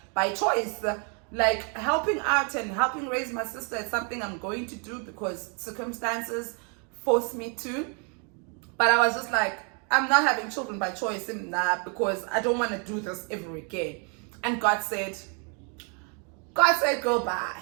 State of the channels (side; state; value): left; quieter; 38.0 dB